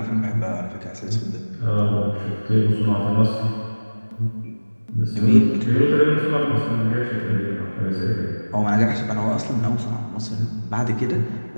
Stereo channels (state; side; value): inverted; both; correlation -1.00